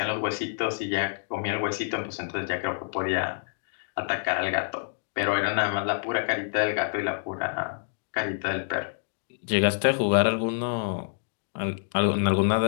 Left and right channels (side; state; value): right; silent; digital silence